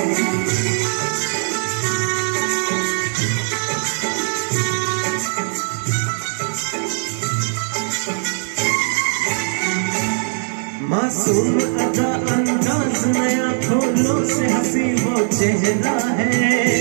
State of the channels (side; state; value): left; silent; digital silence